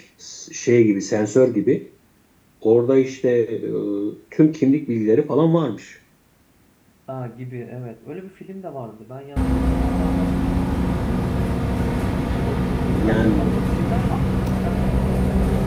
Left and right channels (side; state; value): both; identical; correlation 1.00